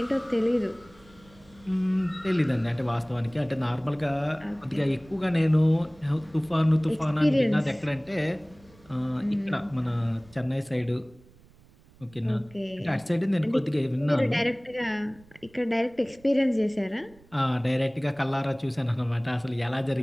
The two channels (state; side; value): noise; right; rumble, 26 dB below the sound